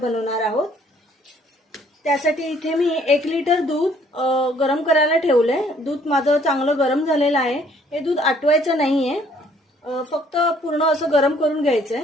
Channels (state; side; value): normal; both; correlation 0.62